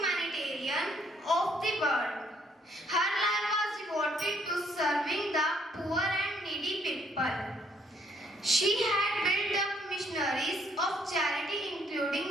of the world. Her life was devoted to serving the poor and needy people. She had built up missionaries of charity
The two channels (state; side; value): normal; both; correlation 0.68